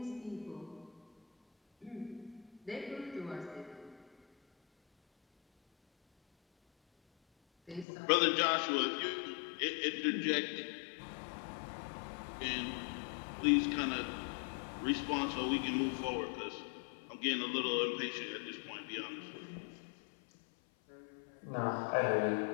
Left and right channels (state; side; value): drops out; right; at 7.9 s